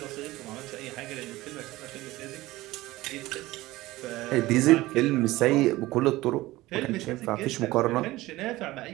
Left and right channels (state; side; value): quieter; left; 18.3 dB